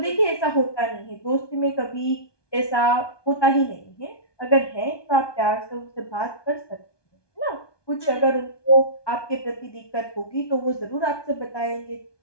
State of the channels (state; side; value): late; right; 1.2 ms